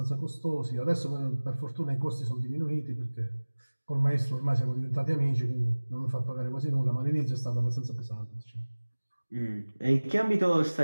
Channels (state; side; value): inverted; both; correlation -1.00